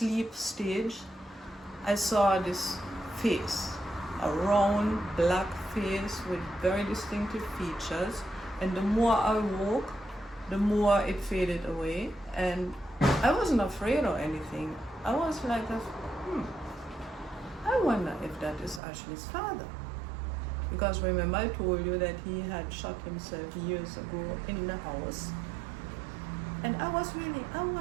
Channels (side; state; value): left; drops out; at 18.8 s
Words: stage, I saw this face, a round black face with very distinctive features, and the more I woke, the more it faded away, and I wasn't afraid or anything. I was like, I wonder if that is Ashley's father. Because remember I told you that he had shot himself years ago in the house. And I